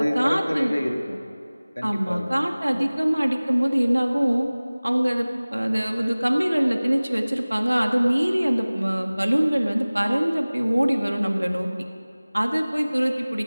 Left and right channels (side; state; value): both; inverted; correlation -0.99